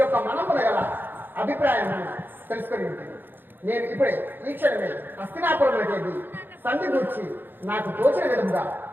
మనమున గల అభిప్రాయం తెలుసుకొని ఉంటుంది. నేను ఇప్పుడే ఈ క్షణమే హస్తినాపురంలోకి సంధి గూర్చి నాకు తోచిన విధంగా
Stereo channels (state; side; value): late; left; 0.095 ms